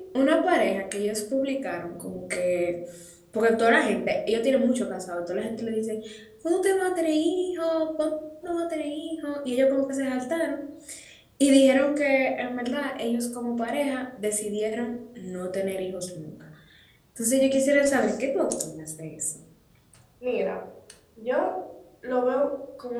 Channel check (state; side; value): identical; both; correlation 1.00